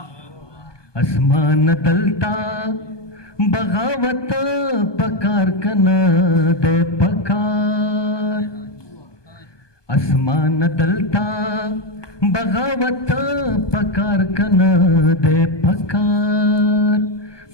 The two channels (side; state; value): right; late; 1.2 ms